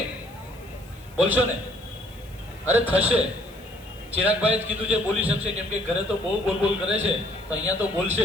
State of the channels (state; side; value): noise; left; hiss, 26 dB below the sound